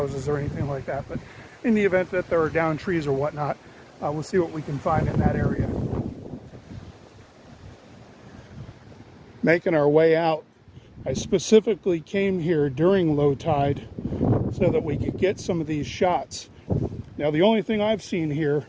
or anything like that. But in the event that there are down trees or whatnot, we'll see what we can find in that area. Making our way out, I specifically came here during low tide so that we could get some of these shots. Now, the only thing I've seen here,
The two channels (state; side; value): identical; both; correlation 1.00